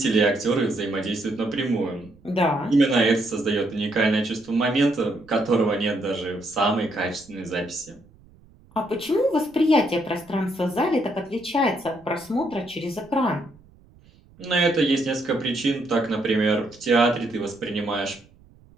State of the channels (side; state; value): right; noise; rumble, 27 dB below the sound